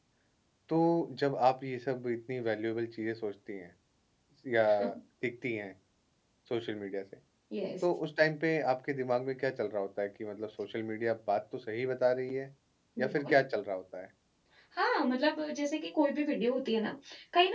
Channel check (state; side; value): identical; both; correlation 1.00